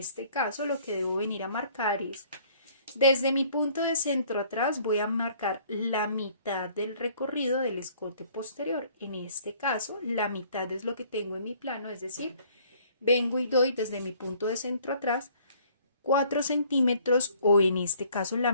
caso lo que debo venir a marcar es, desde mi punto de centro atrás voy a marcar la mitad del recorrido del escote posterior. En este caso, la mitad es lo que tengo en mi plano, es decir, vengo y doy desde mi punto de centro atrás 4 centímetros o en este caso la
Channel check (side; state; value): both; inverted; correlation -0.58